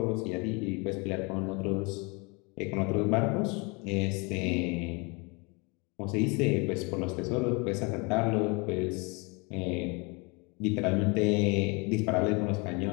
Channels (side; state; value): right; quieter; 29.7 dB